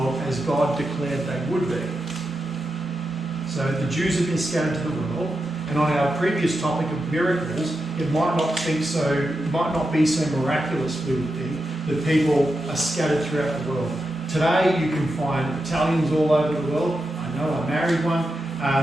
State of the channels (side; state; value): both; normal; correlation 0.88